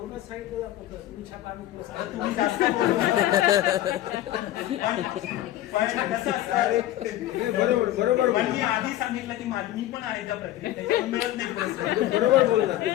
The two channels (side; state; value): right; quieter; 14.0 dB